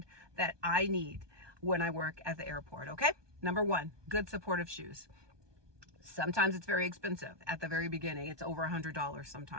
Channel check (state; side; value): late; left; 1.2 ms